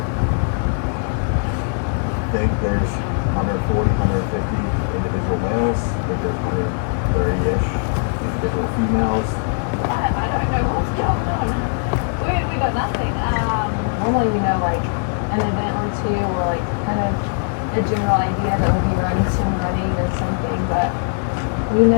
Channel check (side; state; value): right; silent; 66 dB below the other